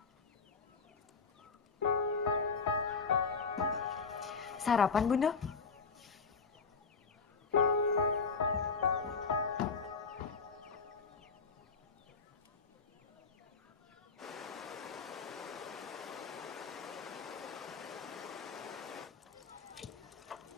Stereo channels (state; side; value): quieter; right; 4.9 dB